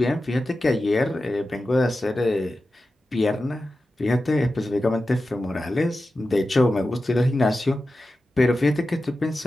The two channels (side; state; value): both; normal; correlation 0.93